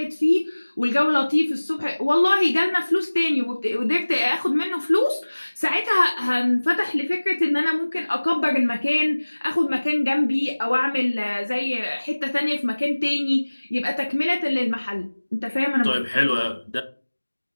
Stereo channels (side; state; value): both; inverted; correlation -1.00